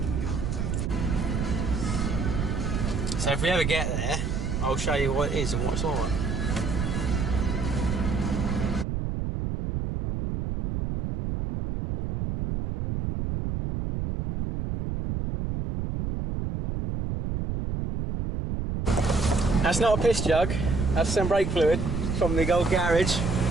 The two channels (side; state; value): right; noise; rumble, 2 dB below the sound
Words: So if we ever get there, I'll show you what it is and what it's on. That's not a piss jug, that's some brake fluid from the old garage.